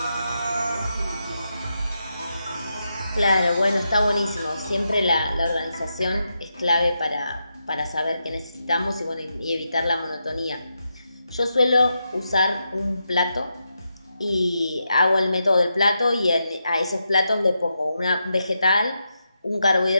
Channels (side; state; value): both; inverted; correlation -0.85